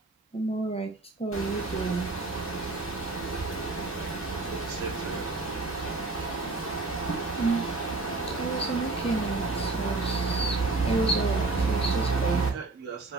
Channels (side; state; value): left; quieter; 3.2 dB